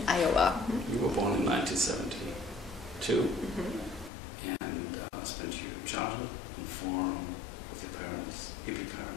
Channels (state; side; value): drops out; right; at 4.1 s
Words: Iowa. You were born in 1972 and spent your childhood on a farm with your parents, hippie